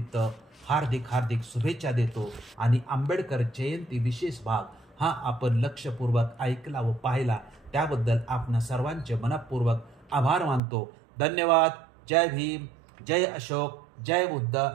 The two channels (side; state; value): left; drops out; at 10.6 s